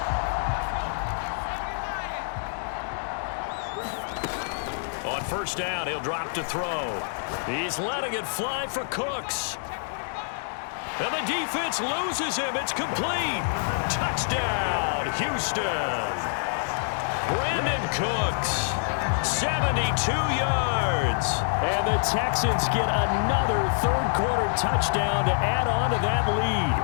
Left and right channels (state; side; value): silent; right; digital silence